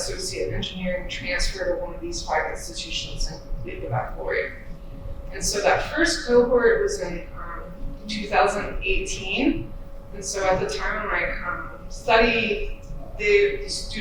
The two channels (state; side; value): identical; both; correlation 1.00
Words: in engineering, transfer to one of these 5 institutions and complete the baccalaureate. And so that first cohort was in 2018, and so at the time of my study, the